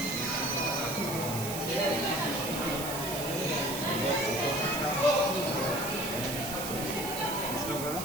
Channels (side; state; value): right; noise; hiss, 6 dB below the sound